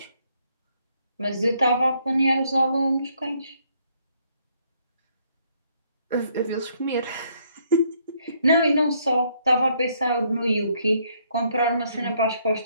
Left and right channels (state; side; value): inverted; both; correlation -0.69